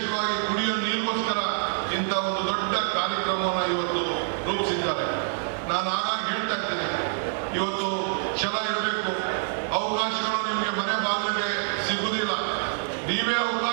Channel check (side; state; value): left; silent; 61 dB below the other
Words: ಕುಡಿಯುವ ನೀರಿಗೋಸ್ಕರ ಇಂಥ ಒಂದು ದೊಡ್ಡ ಕಾರ್ಯಕ್ರಮವನ್ನು ಇವತ್ತು ರೂಪಿಸಿದ್ದಾರೆ. ನಾನು ಆಗಾಗ ಹೇಳ್ತಾ ಇದ್ದೇನೆ, ಇವತ್ತು ಛಲ ಇರಬೇಕು. ಅವಕಾಶಗಳು ನಿಮಗೆ ಮನೆ ಬಾಗಿಲಿಗೆ ಸಿಗುವುದಿಲ್ಲ. ನೀವೇ